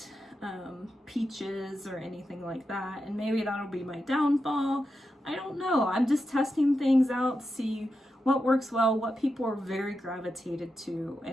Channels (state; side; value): normal; both; correlation 0.88